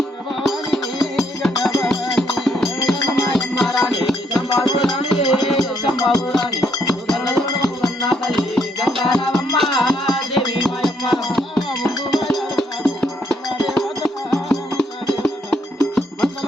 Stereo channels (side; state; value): both; normal; correlation 0.72